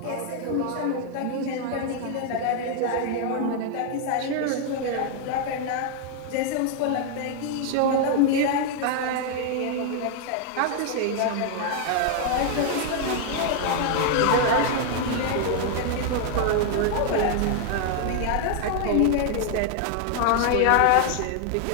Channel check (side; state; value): both; different; correlation 0.00